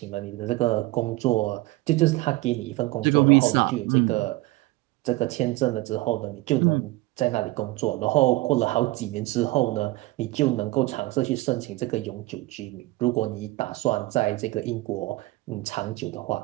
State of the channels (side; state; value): left; quieter; 19.9 dB